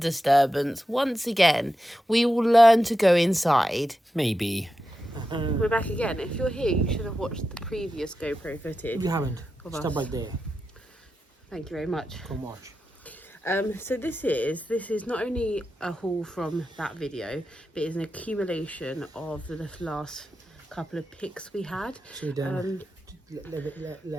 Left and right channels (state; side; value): normal; both; correlation 0.90